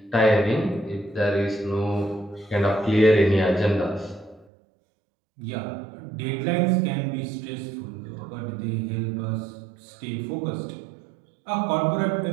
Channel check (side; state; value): left; drops out; at 4.5 s